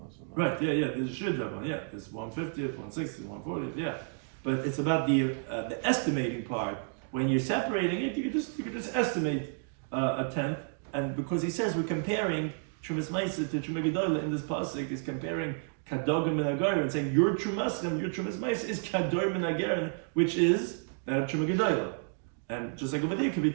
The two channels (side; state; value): left; silent; 57 dB below the other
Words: Right. Yeah. There's a shear davan. Yeah. There's 150th, 160th, 140th. Yeah. But it's about the estimating part. When you're separating it, you could just estimate a tenth. And because he says we're comparing Trumas Meiser to Truma Gedolah in this pasuk, he's comparing Kadogim and Agarim, and saying your Trumas Meiser is Kadogim and Agarim, which is that of Truma Gedolah. And just like over there could be